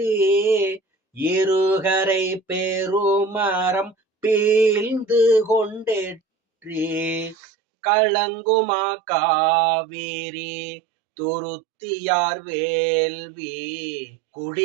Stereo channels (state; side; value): drops out; left; at 7.4 s